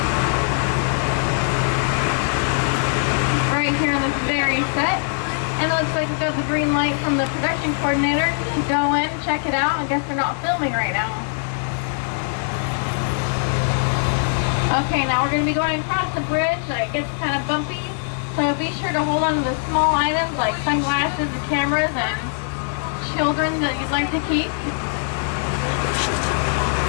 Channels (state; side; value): silent; right; digital silence